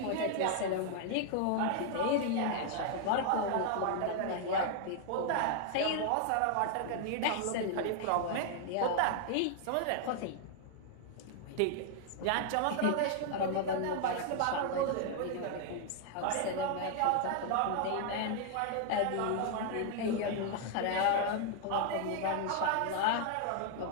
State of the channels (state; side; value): different; both; correlation 0.00